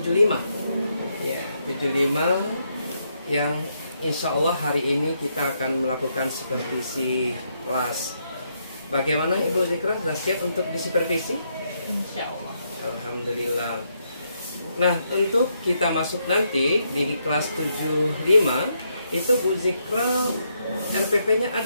Ya, 75 yang insya Allah hari ini kita akan melakukan supervisi kelas. Bagaimana Ibu Zikra, sudah siap untuk disupervisi? Insya Allah. Alhamdulillah. Nah, untuk kita masuk nanti di kelas 75 itu Bu Zikra RPP-nya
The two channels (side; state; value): both; inverted; correlation -0.78